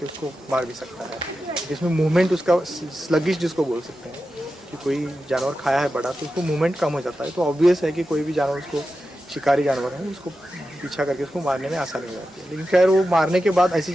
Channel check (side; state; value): both; normal; correlation 0.91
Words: उसको मार भी सकता है। जिसमें मूवमेंट उसका स्लगिश जिसको बोल सकते हैं कि कोई जानवर खाया है बड़ा तो उसको मूवमेंट कम हो जाता है, तो ऑब्वियस है कि कोई भी जानवर उसको शिकारी जानवर है उसको पीछा करके उसको मारने में आसानी हो जाती है। लेकिन खैर वो मारने के बाद ऐसी